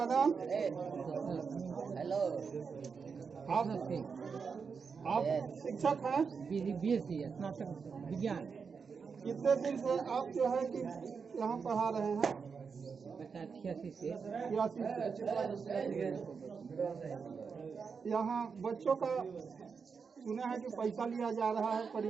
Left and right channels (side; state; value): left; quieter; 5.6 dB